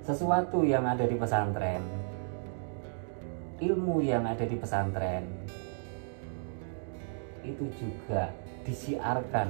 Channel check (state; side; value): silent; left; digital silence